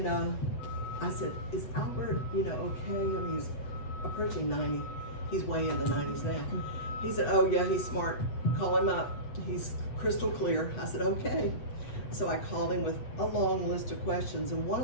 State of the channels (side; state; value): right; late; 8.1 ms